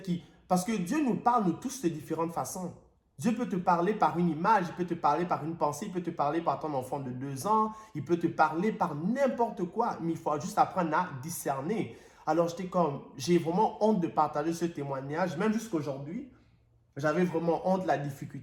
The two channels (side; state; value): both; identical; correlation 1.00